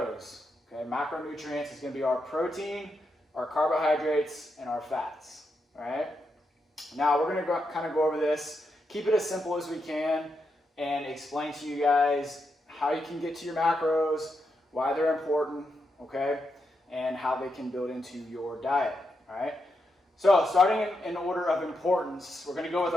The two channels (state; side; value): normal; both; correlation 0.84